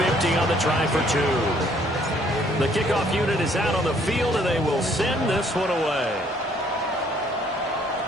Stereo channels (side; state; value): both; normal; correlation 0.63